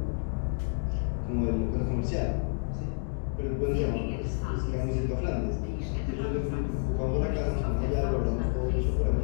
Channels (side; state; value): right; silent; digital silence